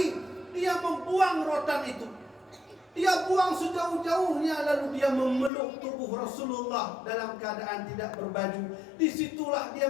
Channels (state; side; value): drops out; right; at 5.5 s